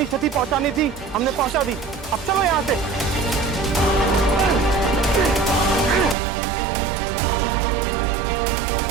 क्षति पहुंचानी थी हमने पहुंचा दी। अब चलो यहां से।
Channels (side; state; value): left; drops out; at 6.2 s